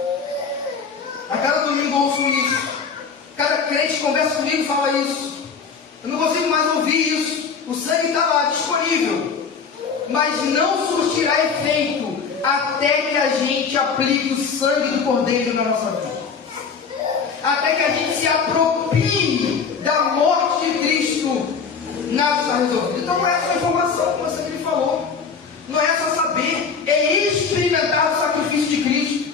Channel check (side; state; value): right; quieter; 5.7 dB